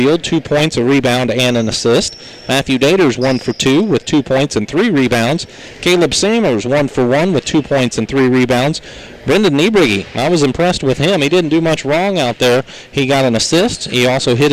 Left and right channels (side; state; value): both; identical; correlation 1.00